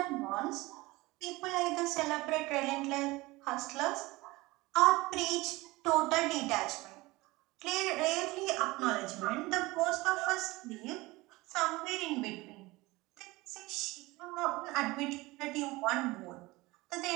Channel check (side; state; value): left; quieter; 21.2 dB